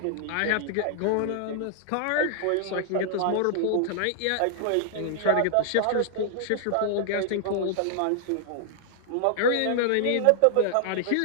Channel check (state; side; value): different; both; correlation -0.01